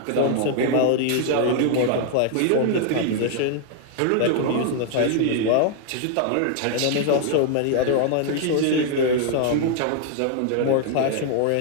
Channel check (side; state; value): both; different; correlation 0.00